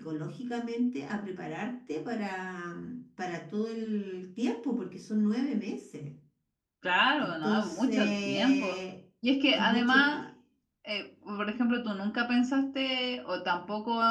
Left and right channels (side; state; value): both; identical; correlation 1.00